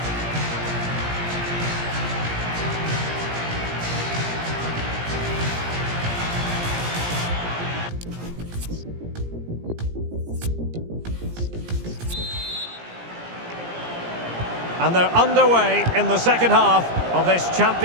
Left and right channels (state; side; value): late; left; 17 ms